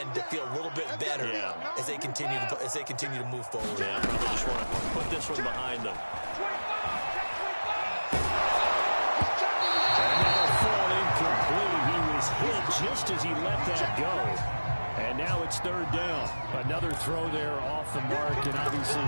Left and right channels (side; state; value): both; inverted; correlation -1.00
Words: to feel a little bit better as they continue to move forward. Yeah, probably just want to put this one behind them. And that'll fall incomplete. He was hit just as he let that go. And now it's third down. Another throw there off the mark, and obviously